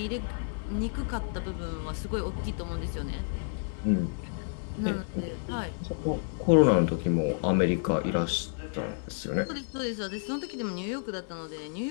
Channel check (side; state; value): right; silent; 58 dB below the other